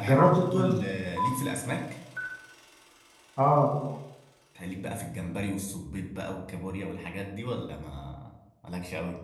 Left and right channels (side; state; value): both; identical; correlation 1.00